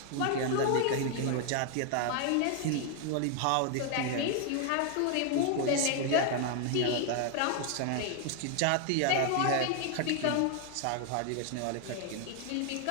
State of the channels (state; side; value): different; both; correlation 0.00